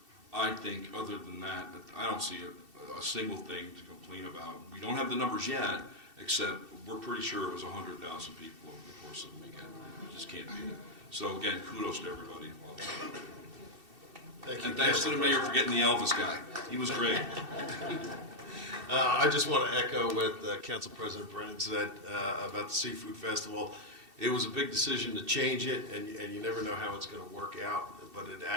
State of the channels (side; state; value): left; late; 2.7 ms